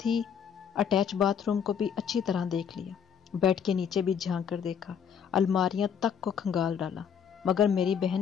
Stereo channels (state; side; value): quieter; right; 7.7 dB